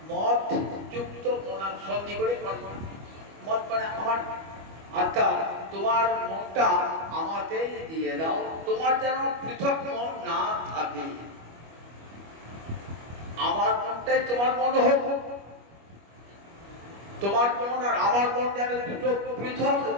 মদ যুক্ত মনা, সন্ধি করে মন্মনা। মদ মানে আমার আত্মা, তোমার মনটা আমাকে দিয়ে দাও, তোমার যেন পৃথক মন না থাকে, আমার মনটাই তোমার মন হোক, তোমার মন আর আমার মন যেন দুটো পৃথক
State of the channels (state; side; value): late; left; 25 ms